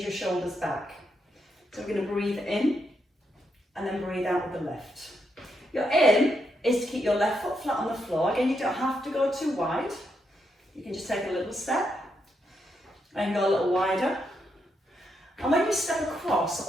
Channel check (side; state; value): both; normal; correlation 0.81